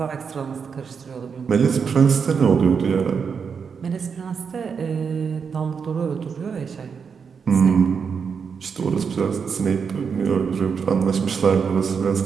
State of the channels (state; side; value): quieter; left; 6.2 dB